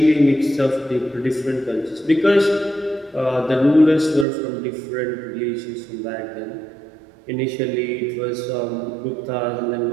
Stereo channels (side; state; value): left; drops out; at 4.2 s